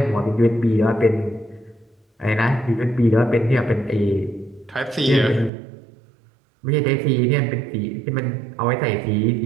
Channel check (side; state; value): left; drops out; at 5.5 s